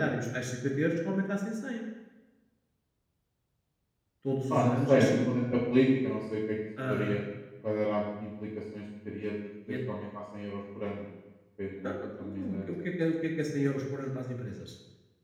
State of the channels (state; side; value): identical; both; correlation 1.00